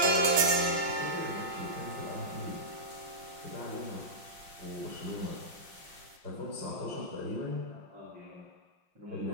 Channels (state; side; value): late; left; 5.6 ms